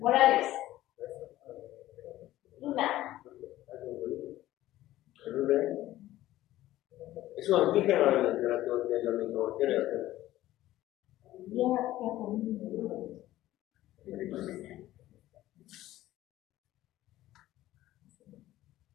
Luna. Es un antígeno de la microbacteria.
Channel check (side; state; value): right; quieter; 15.1 dB